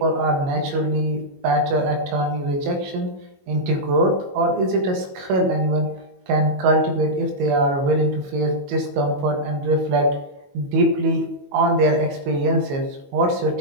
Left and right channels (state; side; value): late; left; 22 ms